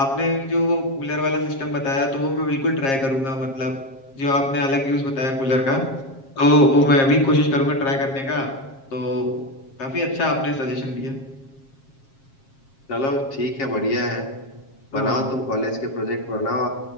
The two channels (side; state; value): right; late; 7.4 ms